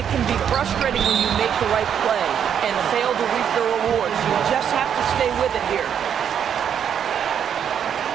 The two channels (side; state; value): left; quieter; 8.5 dB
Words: can be frustrating when you make the right play and fail to reap the rewards. You just have to stay with it here.